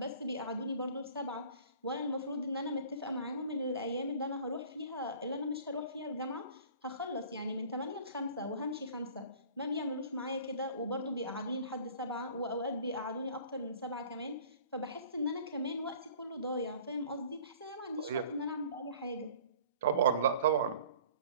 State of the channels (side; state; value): both; inverted; correlation -0.49